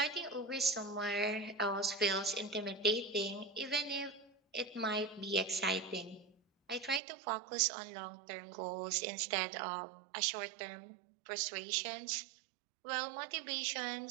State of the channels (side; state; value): left; drops out; at 7.0 s